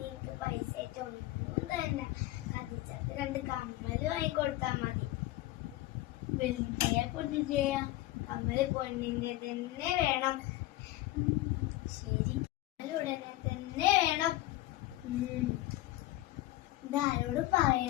പൈസ ആയിട്ട് ഒന്നും തന്നെ കത്തിച്ചത് 2 കമ്മല് വാങ്ങിക്കൊടുത്താ മതി. വെളുത്തയാ പൊന്നിന്റെയാ? കമ്മല് പൊന്നിന്റെ തന്നെ വേണം. ശരി, ഉടനെ തന്നെ വേണം. ഇതാരോട്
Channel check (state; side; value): quieter; right; 16.7 dB